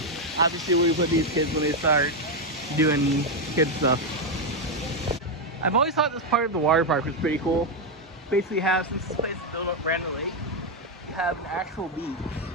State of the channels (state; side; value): normal; both; correlation 0.04